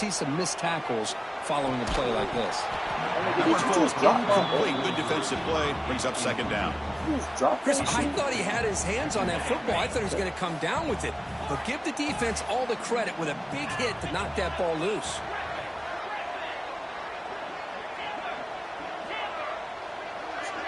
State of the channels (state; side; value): identical; both; correlation 1.00